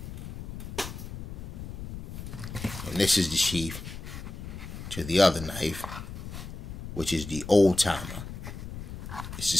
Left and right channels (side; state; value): left; noise; rumble, 9 dB below the sound